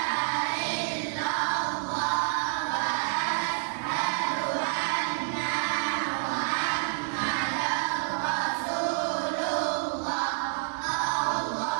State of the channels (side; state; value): left; silent; digital silence